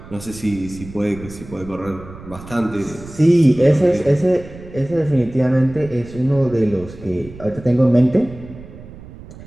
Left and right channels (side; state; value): right; noise; rumble, 16 dB below the sound